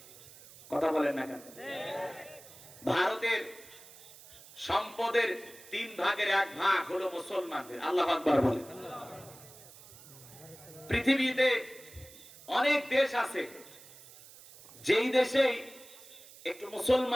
কথা বলেন না কেন? ভারতের সম্পদের 3 ভাগের 1 ভাগ হলো মুসলমানদের। আল্লাহু আকবার বলেন। পৃথিবীতে অনেক দেশ আছে যেই দেশে একটু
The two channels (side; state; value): right; noise; hiss, 20 dB below the sound